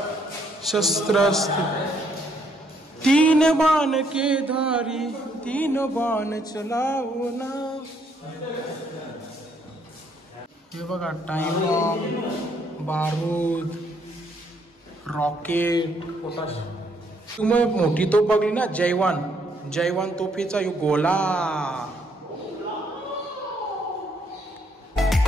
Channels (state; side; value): normal; both; correlation 0.70